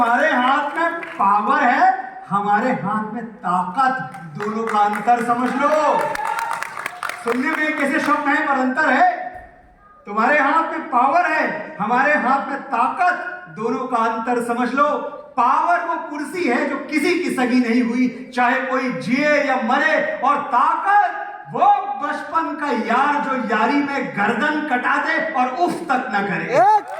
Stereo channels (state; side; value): identical; both; correlation 1.00